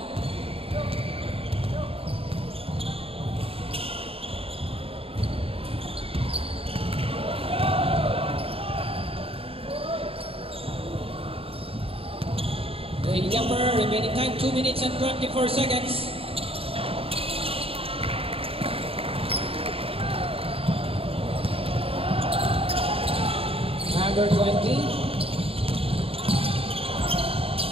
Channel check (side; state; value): left; late; 0.27 ms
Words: The jumper, remaining time 2 minutes and 24 seconds. Number 20.